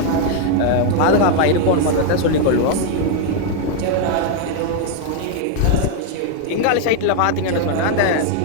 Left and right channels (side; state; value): both; different; correlation 0.00